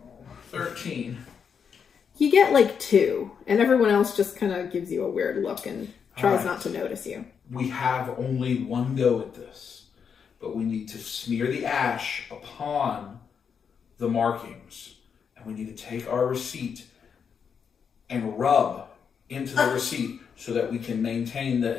13. You get like 2, and everyone else just kind of gives you a weird look and tries Alright. not to notice you. We have only one go at this, but we need to smear the ash upon the markings, and we need to take our receipt and rub into the receipt so that we can maintain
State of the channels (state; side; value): quieter; right; 6.8 dB